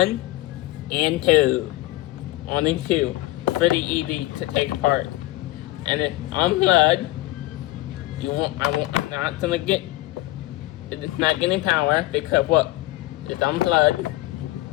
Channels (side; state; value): right; quieter; 18.5 dB